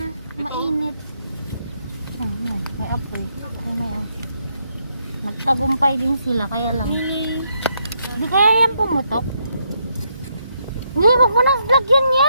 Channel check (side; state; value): both; inverted; correlation -0.76